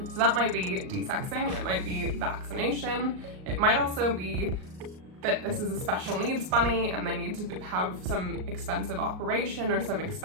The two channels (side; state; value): left; late; 38 ms